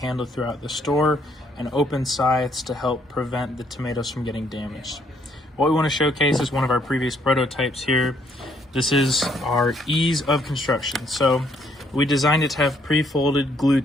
throughout the store and open sides to help prevent the tomatoes from getting damaged. What we want to showcase is one of our previous prototypes here. This is our ease of construction. So we designed it to have pre-folded glue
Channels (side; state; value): both; normal; correlation 0.68